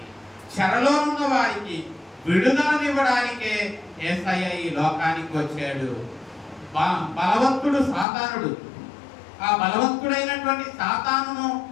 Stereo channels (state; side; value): drops out; right; at 8.1 s